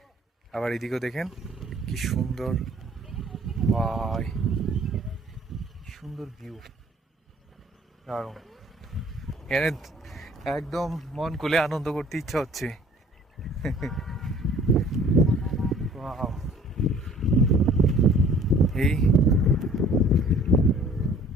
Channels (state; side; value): normal; both; correlation 0.53